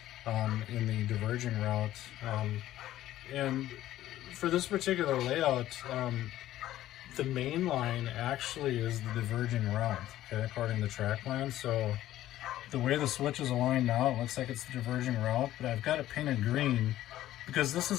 in the diverging route. And for this particular layout, the main line actually is the diverging route, okay, according to track plan. So the way the switch is aligned now, it looks like it's the diverging route, but I've got it painted green because this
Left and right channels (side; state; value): right; quieter; 13.8 dB